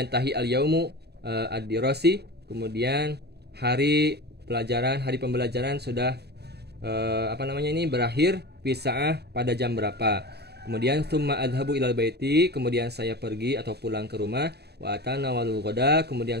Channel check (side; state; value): left; late; 0.48 ms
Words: al-yaumu ad-dirasi, kemudian hari pembelajaran sudah berakhir fi sa'ah pada jam berapa. Kemudian tsumma adhabu ilal baiti, kemudian saya pergi atau pulang ke rumah. Wa atanawalul ghada,